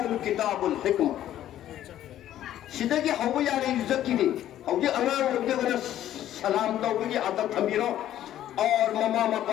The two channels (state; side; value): quieter; right; 12.2 dB